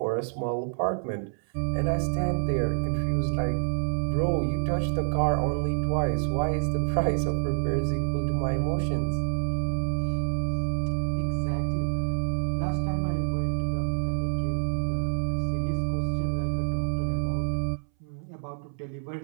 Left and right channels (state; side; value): silent; left; 60 dB below the other